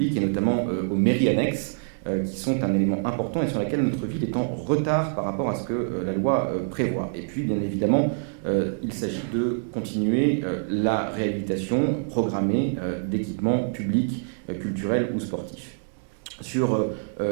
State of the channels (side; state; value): left; silent; digital silence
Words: et notamment aux mairies annexes, qui sont un élément important et sur laquelle notre ville est en retard par rapport à ce que la loi prévoit. Et puis, bien évidemment, il s'agit de continuer la réhabilitation programmée d'équipements publics, culturels ou sportifs. Sur